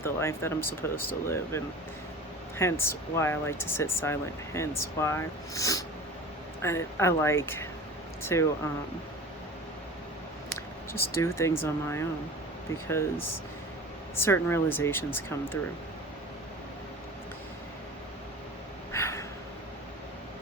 the life that I'm supposed to live, and hence why I like to sit silent, hence why I like to just do things on my own, because certain realizations come through.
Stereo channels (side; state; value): both; normal; correlation 0.37